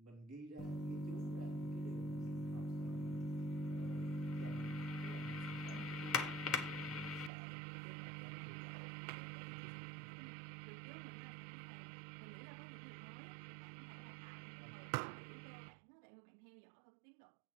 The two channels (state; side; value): drops out; left; at 7.3 s